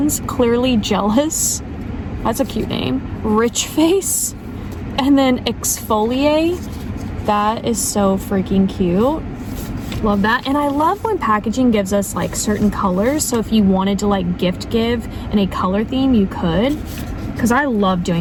Clearly Jealous. That's a cute name. Rich Face. And then Exfoliate. That is so freaking cute. Love that. And I love when packaging gives us like certain colors. So if you wanted to like gift give in a color theme, you could. Because I love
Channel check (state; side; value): identical; both; correlation 1.00